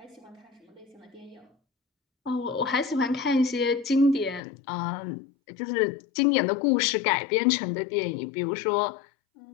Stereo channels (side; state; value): right; drops out; at 4.4 s